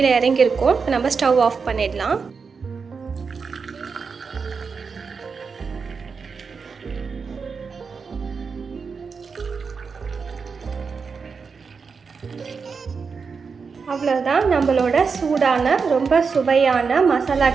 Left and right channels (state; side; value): quieter; left; 5.3 dB